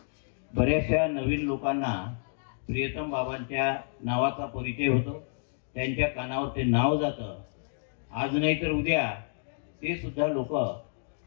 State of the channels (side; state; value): right; silent; digital silence